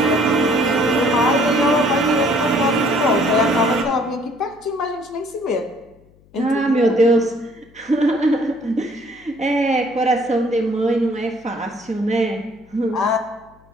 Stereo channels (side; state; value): left; noise; hum, 29 dB below the sound